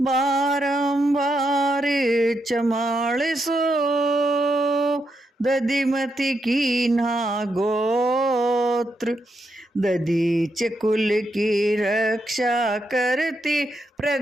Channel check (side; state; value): both; normal; correlation 0.82